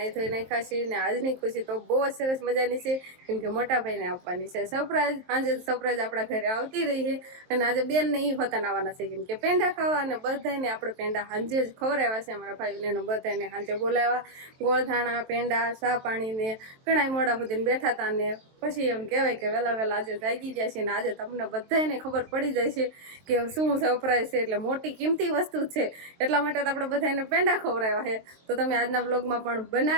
ધોઈ નાખ્યા છીએ ને આજની ખુશી તો બહુ જ સરસ મજાની છે, કેમ કે મોટા ભાઈને આપવાની છે સરપ્રાઈઝ. સાંજે સરપ્રાઈઝ આપણા ઘરે આવતી રહી છે અને આજે બેન ને ઈ હોતા આવવાના છે, કેમ કે પેંડા ખાવા અને બધાને આપણે પેંડા સાંજે જ ખવડાવ્યા છે. અમારા ભાઈને બધાને સાંજે બોલાવ્યા, ગોળધાણા પેંડા ચા પાણી ને ઘણા મોડા સુધી બેઠા હતા ને પછી એમ કહેવાય કે વહેલા વહેલા આજે જાગી ગયા છે ને આજે તમને બધાને ખબર પડી જાય છે કે શું સરપ્રાઈઝ છે. એટલે મોટી કિંમતી વસ્તુ છે, એટલા માટે તો આપણે બધાને પેંડા ખવડાવ્યા છે. તો તમે આજના વ્લોગમાં પણ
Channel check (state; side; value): late; left; 23 ms